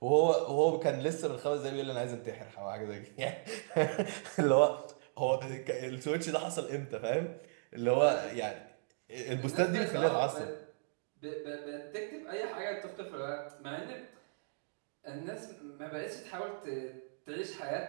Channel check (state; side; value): silent; left; digital silence